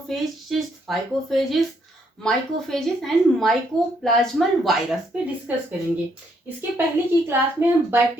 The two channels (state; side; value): normal; both; correlation 0.72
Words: phycophages, mycophages and mycoplasmal virus पे discuss करेंगे। इसके पहले की क्लास में हम